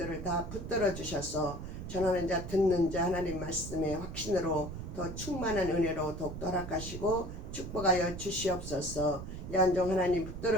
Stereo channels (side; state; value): right; noise; rumble, 8 dB below the sound